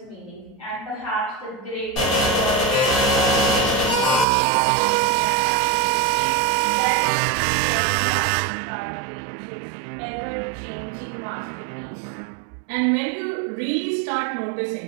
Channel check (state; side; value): drops out; left; at 4.2 s